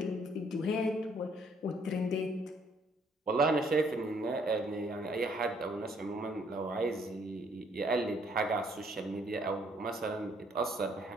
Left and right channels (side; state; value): both; normal; correlation 0.66